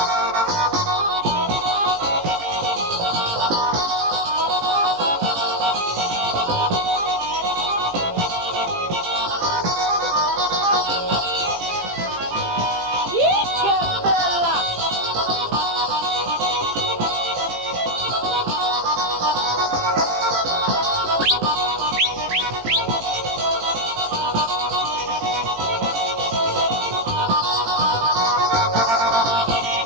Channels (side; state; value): left; late; 18 ms